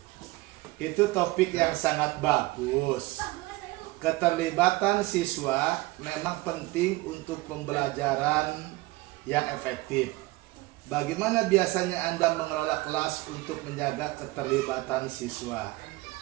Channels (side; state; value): left; quieter; 20.8 dB